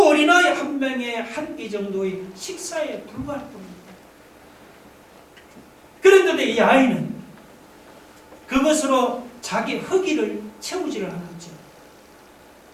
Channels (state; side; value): identical; both; correlation 1.00